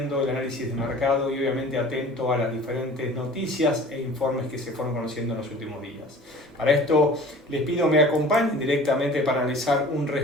el análisis de mercado y obviamente atento a las diferentes noticias e informes que se fueron conociendo en los últimos días. Para esto les pido me acompañen directamente para analizar un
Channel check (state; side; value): normal; both; correlation 0.44